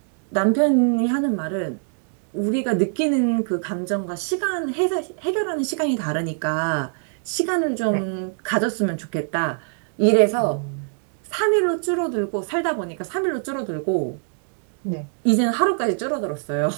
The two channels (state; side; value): silent; left; 63 dB below the other